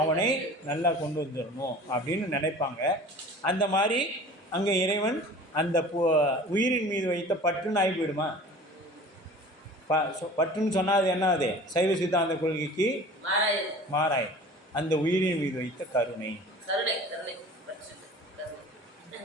நல்லா கொண்டு வந்துடணும் அப்படின்னு நினைப்பாங்க. அந்த மாதிரி அங்கே இறைவன் அந்த உயிரின் மீது வைத்த பற்றுன்னு ஆகி போயிடுமா? பற்றுன்னு சொன்னால் அது என்ன? அது சைவ சித்தாந்த கொள்கைக்கு மாறாய். அந்த உயிரின் மீது வைத்த கருணை.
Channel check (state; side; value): normal; both; correlation 0.42